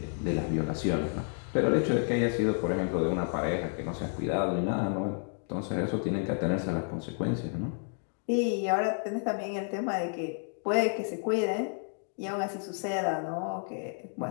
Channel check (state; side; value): silent; right; 57 dB below the other